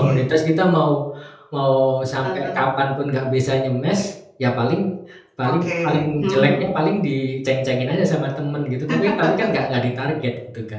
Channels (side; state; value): both; identical; correlation 1.00